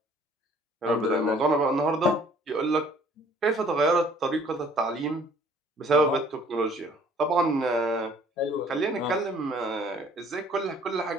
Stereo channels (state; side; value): normal; both; correlation 0.57